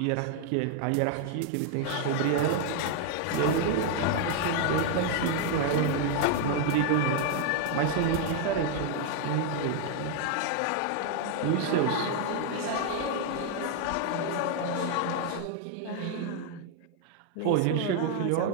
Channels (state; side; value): different; both; correlation 0.00